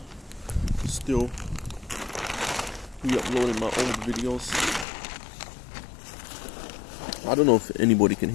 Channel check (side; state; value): right; drops out; at 4.9 s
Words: Still re-uploading my old videos. I don't know if anybody can